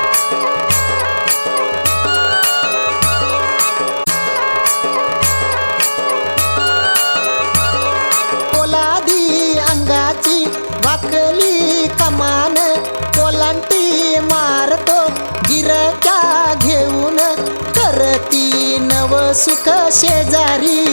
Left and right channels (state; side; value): inverted; both; correlation -1.00